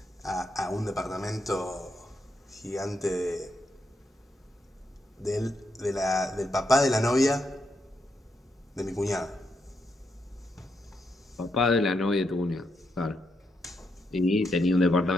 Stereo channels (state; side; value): normal; both; correlation 0.81